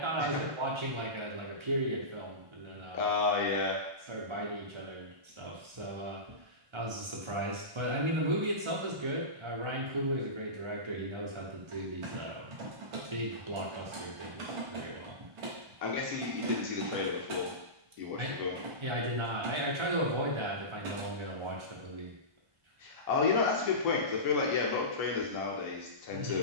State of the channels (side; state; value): left; late; 1.3 ms